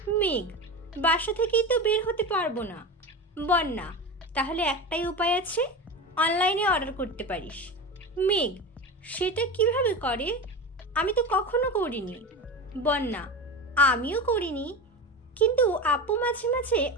মেঘ, বাসা থেকেই তো বের হতে পারবো না। বন্যা, তাহলে একটাই উপায় আছে, অনলাইনে অর্ডার করতে পারিস। মেঘ, সেটা কিভাবে করে? আমি তো কখনো করিনি। বন্যা, আমিও করিনি, কিন্তু আপু মাঝে মাঝে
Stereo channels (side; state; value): both; normal; correlation 0.25